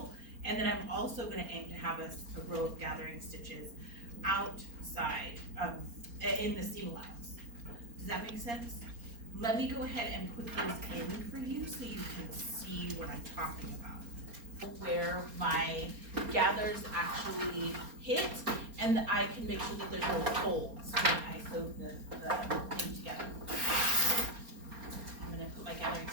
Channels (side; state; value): left; late; 4.3 ms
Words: and then I'm also gonna aim to have a row of gathering stitches outside, in the seam allowance. Does that make sense? Let me go ahead and put those in for you so you can see what I'm talking about. Where my gathers actually hit, and I can make sure that there's no folds when I sew the thing together. I'm gonna put my gathering